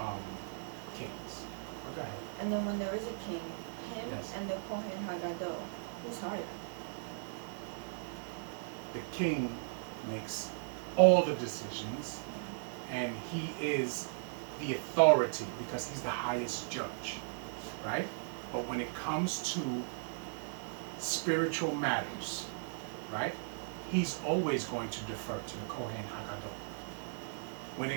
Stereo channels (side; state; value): left; silent; digital silence